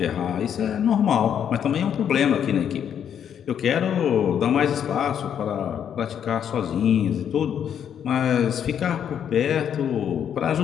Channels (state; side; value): quieter; right; 8.8 dB